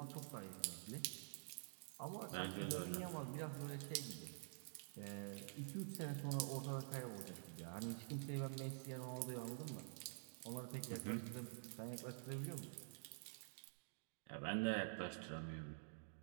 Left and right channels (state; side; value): silent; left; digital silence